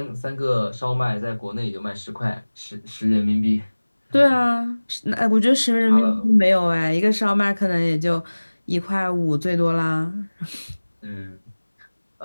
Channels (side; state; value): both; inverted; correlation -1.00